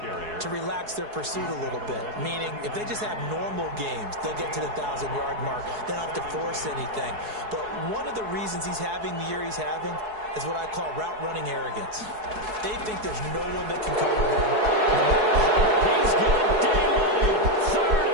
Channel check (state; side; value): late; left; 4.7 ms